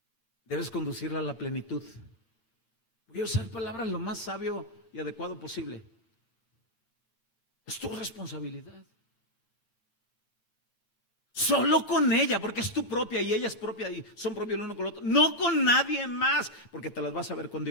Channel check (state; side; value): late; right; 8.8 ms